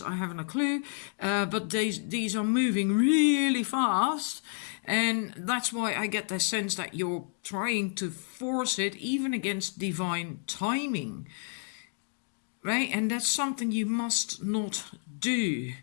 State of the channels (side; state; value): right; silent; 58 dB below the other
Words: haven't a clue, but these are moving really fast. And that's why I get the sense that you're trying to force it even against divine timing. Right? And that's something you must not do.